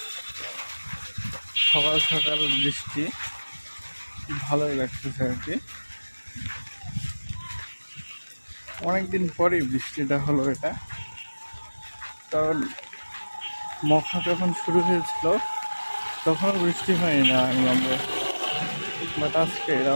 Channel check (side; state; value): both; inverted; correlation -1.00